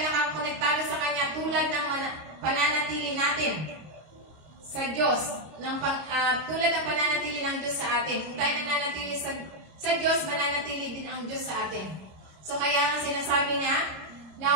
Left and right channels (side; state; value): left; late; 26 ms